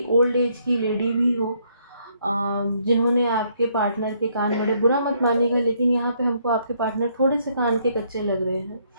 ओल्ड एज की लेडी भी हो, जिन्होंने आपके पार्टनर के कान बड़े, बुरा मत मानिएगा लेकिन यहाँ पे हमको आपके पार्टनर थोड़े से कान के कच्चे लग रहे हैं।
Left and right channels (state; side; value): inverted; both; correlation -0.69